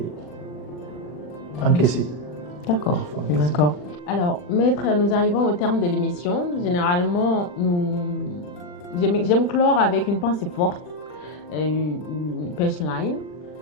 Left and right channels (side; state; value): right; late; 40 ms